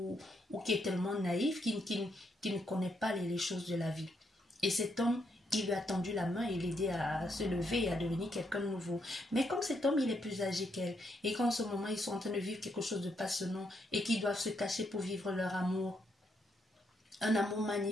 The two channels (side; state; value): both; normal; correlation 0.77